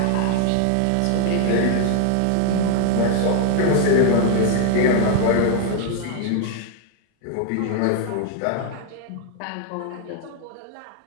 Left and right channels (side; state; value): both; different; correlation 0.00